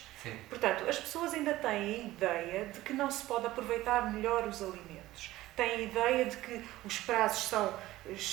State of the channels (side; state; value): left; quieter; 16.5 dB